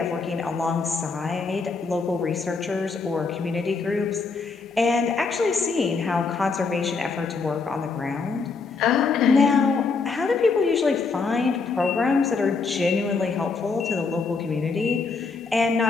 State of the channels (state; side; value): quieter; right; 4.5 dB